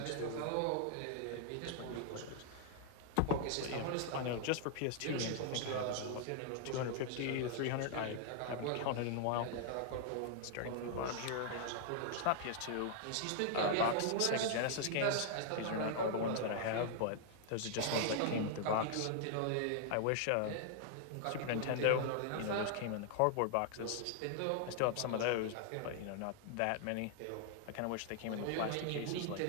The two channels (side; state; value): both; different; correlation -0.01